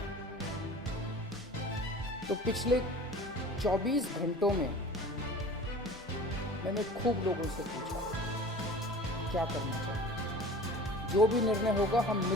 तो पिछले 24 घंटों में मैंने खूब लोगों से पूछा क्या करना चाहिए। जो भी निर्णय होगा हम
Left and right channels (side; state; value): both; normal; correlation 0.41